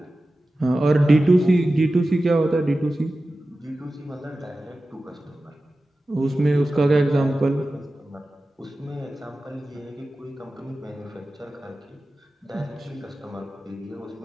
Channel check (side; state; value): both; normal; correlation 0.95